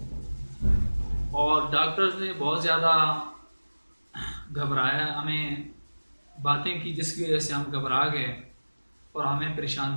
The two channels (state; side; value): inverted; both; correlation -1.00